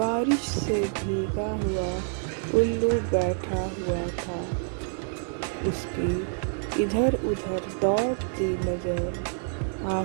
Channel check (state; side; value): silent; left; 60 dB below the other